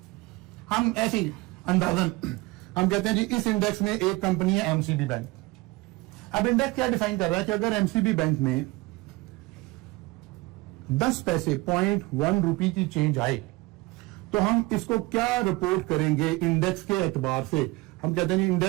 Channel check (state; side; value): quieter; left; 22.4 dB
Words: हम ऐसी अंदाजन हम कहते हैं जी इस इंडेक्स में एक कंपनी है MCB बैंक। अब इंडेक्स क्या डिफाइन कर रहा है कि अगर MCB बैंक में 10 पैसे 0.1 रुपए की चेंज आए तो हम इसको क्या रिपोर्ट करेंगे इंडेक्स के एतबार से। हम कहते हैं